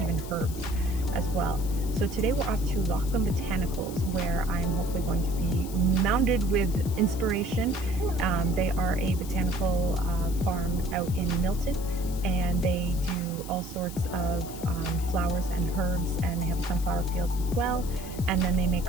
even herbs as well. So today we're off to Lochland Botanicals, where I'm hopefully going to be mounded with inspiration. They are a botanical farm out in Milton, and they do all sorts of flowers and herbs, and they have sunflower fields as well, and then they make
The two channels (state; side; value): noise; left; hiss, 15 dB below the sound